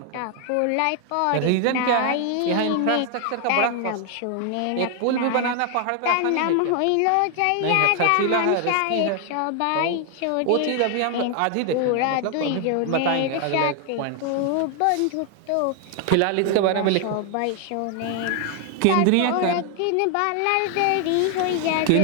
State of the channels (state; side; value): different; both; correlation 0.00